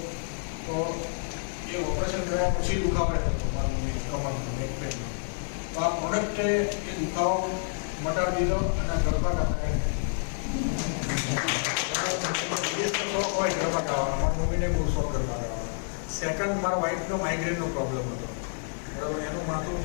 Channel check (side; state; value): right; silent; 59 dB below the other